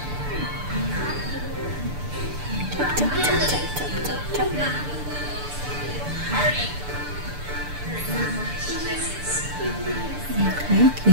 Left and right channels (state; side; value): late; left; 6.8 ms